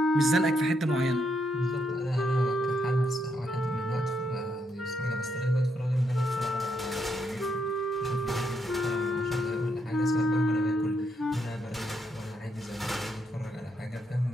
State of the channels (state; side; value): normal; both; correlation 0.78